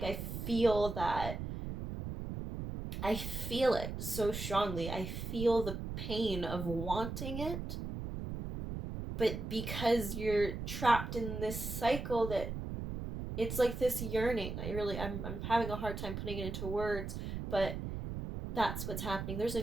I feel it so strongly. I feel the pain of wanting it. But because you're trapped in this cycle, that it's like this yearning. I'm having a hard time putting it into words, but that's what's happening. There's a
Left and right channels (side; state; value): right; noise; rumble, 5 dB below the sound